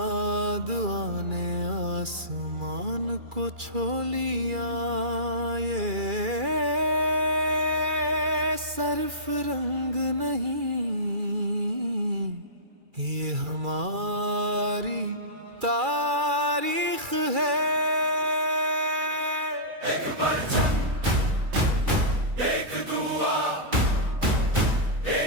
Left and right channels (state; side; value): late; left; 2.3 ms